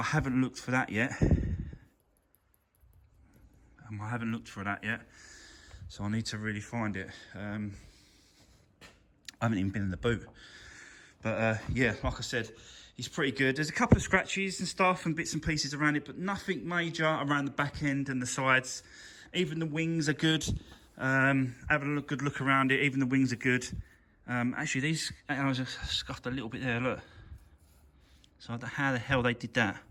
haven't looked for that yet. So I need to really find it. I haven't even been in the boot. But yeah, like I said, it's pretty good. There's a couple of scratches and stuff and bits and pieces around it, but nothing major around the back end and the sides. Even the wings are good. Having a good look around it, even the wings are good. Actually, these alloys are scuffed a little bit there, look. So how the hell they did that?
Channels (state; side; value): identical; both; correlation 1.00